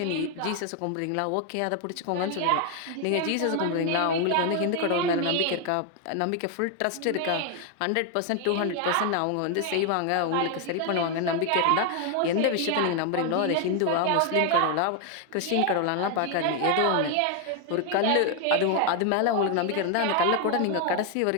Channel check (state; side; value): different; both; correlation 0.01